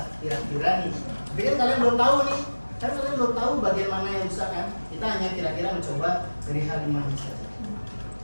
Kira-kira nih. Tapi kan kalian belum tahu nih, kan kalian belum tahu bagian mana yang rusak kan? Kita hanya kira-kira mencoba dari hal 5 ini saja.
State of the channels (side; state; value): both; inverted; correlation -1.00